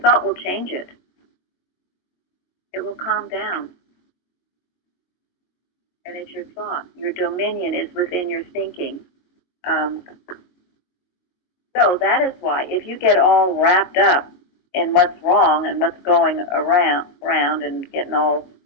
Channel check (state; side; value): late; right; 22 ms